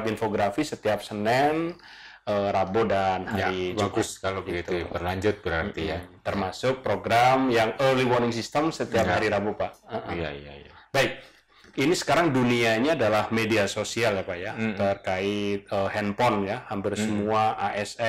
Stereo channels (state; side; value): identical; both; correlation 1.00